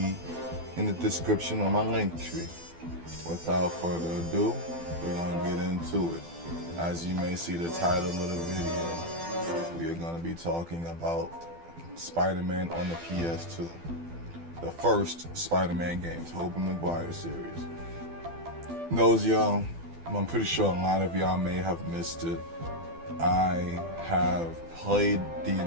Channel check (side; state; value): left; late; 12 ms